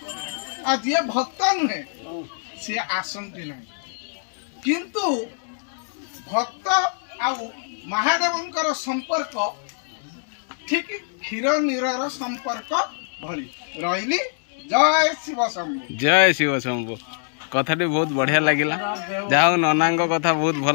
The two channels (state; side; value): silent; right; 63 dB below the other